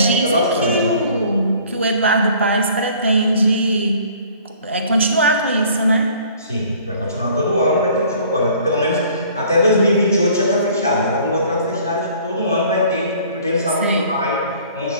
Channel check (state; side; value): inverted; both; correlation -0.53